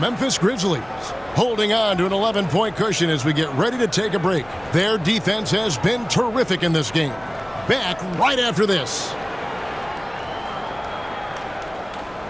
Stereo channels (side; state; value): left; noise; hum, 25 dB below the sound